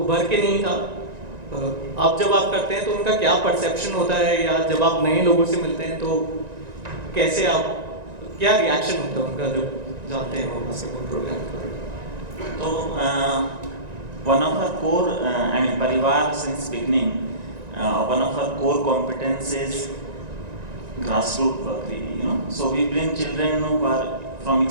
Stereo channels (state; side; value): late; left; 1.9 ms